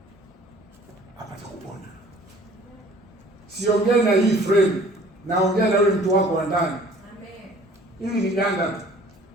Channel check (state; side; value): normal; both; correlation 0.52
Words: apate kupona. Siongee na hii frame, naongea na yule mtu wako wa ndani. Amen. Ili ni ganda